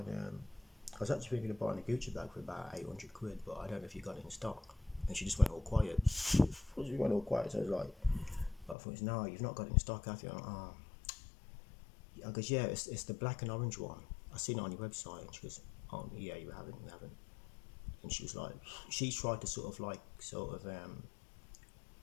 I was actually thinking of buying a Gucci bag for about 800 quid, but I don't know if you got it in stock." And she just went all quiet. She went all quiet. So I was like, I thought, "No, you've not got it in stock, have you?" I'm like, oh. I goes, "Yeah, it's the black and orange one. I seen it on your website." And she goes, "Oh yeah, you haven't." And she was like, she tried to sort of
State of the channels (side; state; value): right; drops out; at 8.8 s